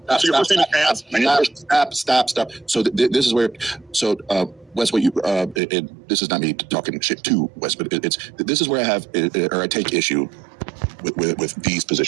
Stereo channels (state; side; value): drops out; left; at 5.6 s